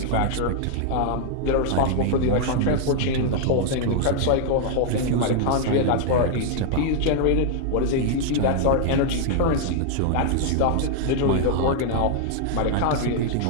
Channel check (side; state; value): both; different; correlation 0.00